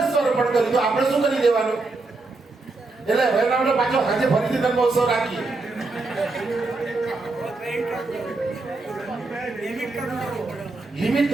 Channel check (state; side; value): quieter; left; 3.5 dB